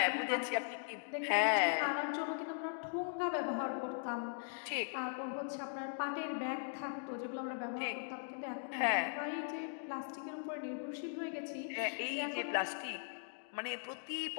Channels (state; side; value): silent; right; digital silence